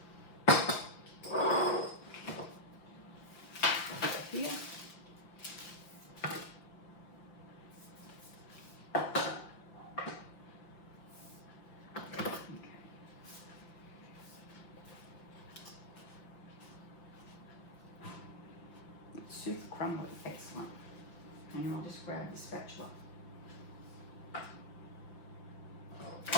Here. Okay. It's super crumbly, excellent. And I'll just grab the spatula.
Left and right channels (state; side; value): late; right; 5.9 ms